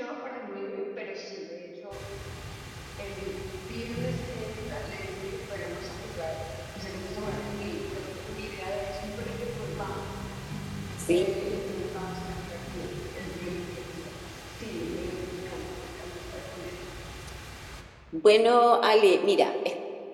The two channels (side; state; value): both; identical; correlation 1.00